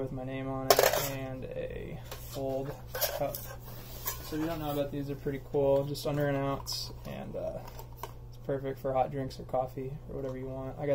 my name on it, and a fold cup. So if you don't know about these, they're pretty cool. Just under an ounce, and it's perfect for hot drinks or coffee or whatever you want. I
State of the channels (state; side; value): identical; both; correlation 1.00